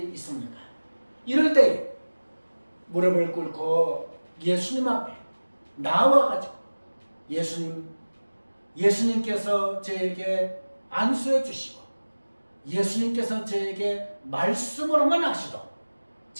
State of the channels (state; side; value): inverted; both; correlation -1.00